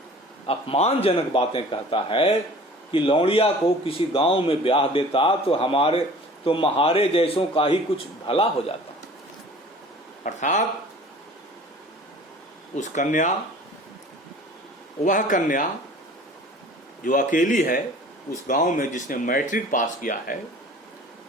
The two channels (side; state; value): both; normal; correlation 0.46